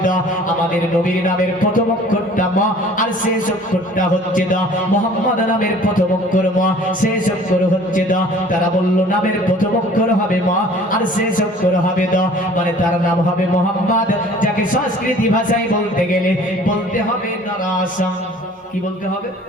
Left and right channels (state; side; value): normal; both; correlation 0.50